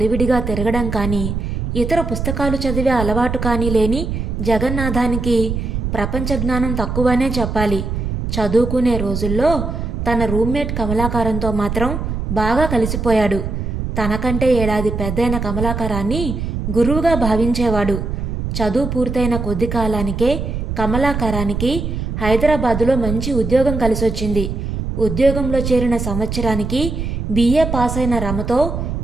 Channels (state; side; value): noise; right; rumble, 3 dB below the sound